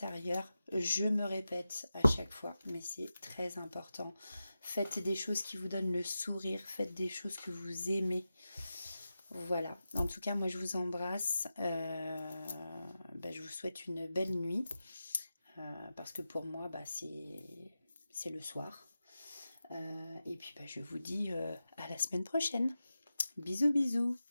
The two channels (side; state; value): both; inverted; correlation -0.92